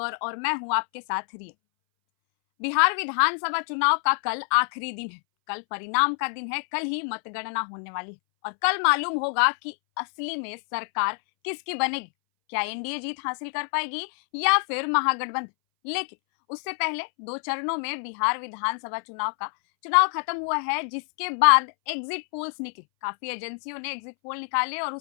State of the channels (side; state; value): right; silent; 61 dB below the other